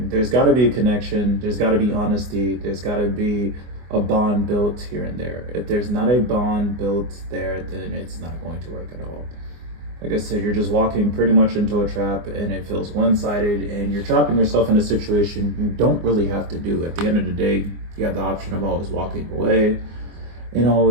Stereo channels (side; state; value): left; late; 24 ms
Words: there's gotta be a connection, there's gotta be honesty, there's gotta be a bond built here and there. If there's not a bond built there, then it's not going to work at all. Like I said, you're just walking pretty much into a trap and it feels one-sided, and you're trapping yourself in a situation you don't really have to do. At the end of the day, you have the option of always walking away and